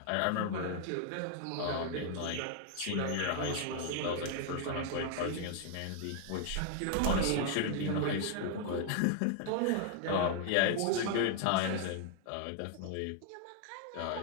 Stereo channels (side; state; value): both; different; correlation 0.00